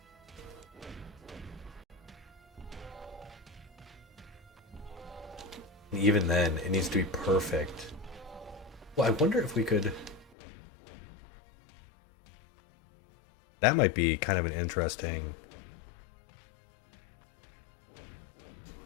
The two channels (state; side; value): drops out; right; at 10.3 s